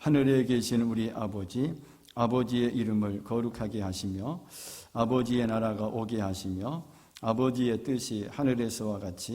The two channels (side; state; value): both; identical; correlation 1.00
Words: 계신 우리 아버지, 아버지의 이름을 거룩하게 하시며 아버지의 나라가 오게 하시며 아버지의 뜻이 하늘에서와